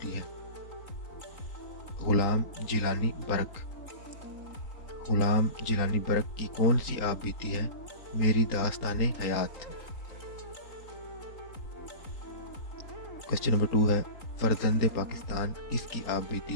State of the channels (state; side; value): late; right; 3.8 ms